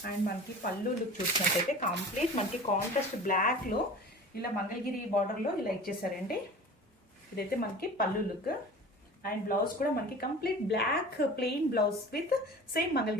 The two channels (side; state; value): both; normal; correlation 0.39